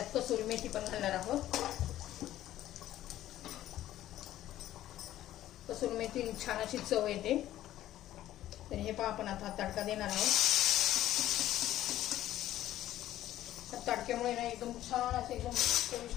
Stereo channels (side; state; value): right; quieter; 13.5 dB